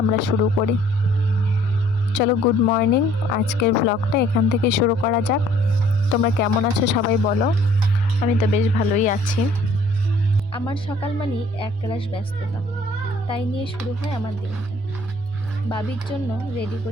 আমরা শুরু করি। চলো, গুড মর্নিং। আজকের ব্লগটা এখান থেকে শুরু করা যাক। তোমরা কেমন আছো সবাই বলো। আমি তো বেশ ভালোই আছি। আমার সকাল মানেই একরাশ ব্যস্ততা, তাই নিয়ে শুরু হয় আমার দিনটা। বাবির জন্য রেডি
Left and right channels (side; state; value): both; normal; correlation 0.58